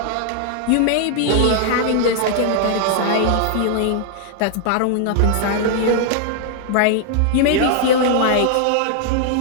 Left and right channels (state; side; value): different; both; correlation 0.00